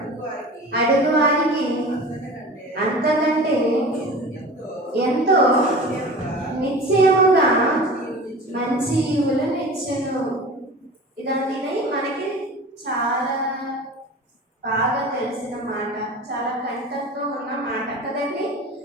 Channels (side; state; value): both; normal; correlation 0.37